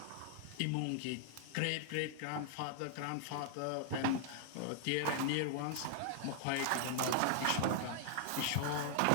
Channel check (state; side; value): different; both; correlation 0.00